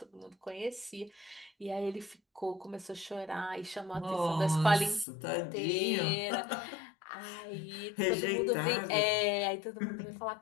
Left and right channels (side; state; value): right; drops out; at 5.1 s